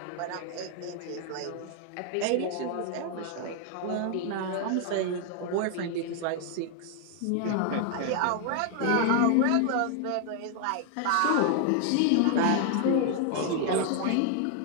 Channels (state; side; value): different; both; correlation 0.00